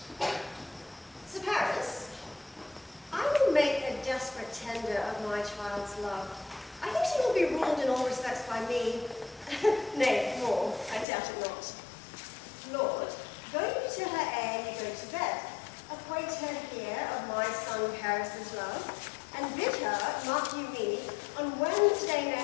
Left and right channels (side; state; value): right; drops out; at 11.1 s